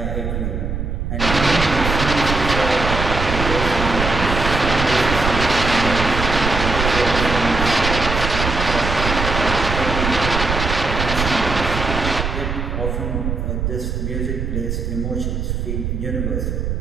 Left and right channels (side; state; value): right; noise; rumble, 3 dB below the sound